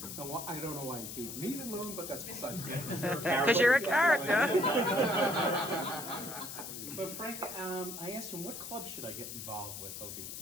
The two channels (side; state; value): left; noise; hiss, 8 dB below the sound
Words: Now, I don't know why he gave me the loan, but that's besides me. Because you're a character. But Frank, I asked him, what club should I get involved with over